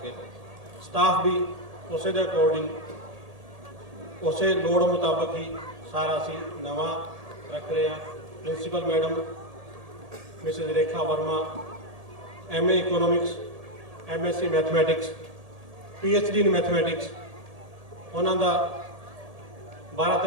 ਸਟਾਫ ਵੀ ਉਸੇ ਦੇ ਅਕੋਰਡਿੰਗ, ਉਸੇ ਲੋੜ ਮੁਤਾਬਕ ਹੀ ਸਾਰਾ ਅਸੀਂ ਨਵਾਂ ਰੱਖ ਰਹੇ ਹਾਂ। Principal madam Mrs Rekha Verma MA economics, MSc mathematics, PhD in mathematics, ਉਹਨਾਂ ਦਾ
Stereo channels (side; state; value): left; late; 1.8 ms